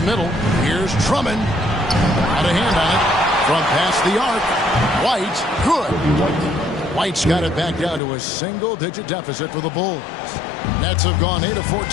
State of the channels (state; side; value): drops out; right; at 8.0 s